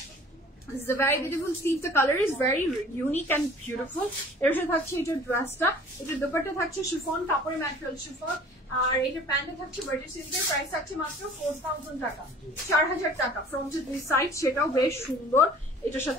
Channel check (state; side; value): normal; both; correlation 0.49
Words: this is a very beautiful sleeve. The color is very unique and beautiful. এর সাথে থাকছে এটা ড্রেসটা, এটা দুপাট্টা থাকছে শিফন, কাপড়ের ম্যাটেরিয়াল শিফন, আর এটা প্যান্টে থাকছে বাটার সিল্কের। প্রাইস থাকছে মাত্র 4,000 টাকা, 4,000 টাকা। ফ্রন্টের 2 সাইড, সেটাও বেশ সুন্দর। এটার